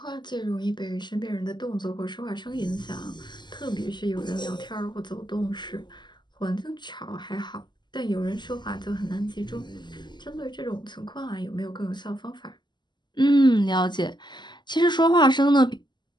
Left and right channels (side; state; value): right; late; 0.21 ms